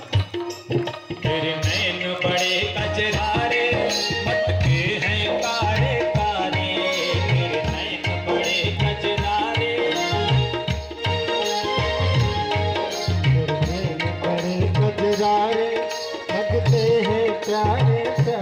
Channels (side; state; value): both; identical; correlation 1.00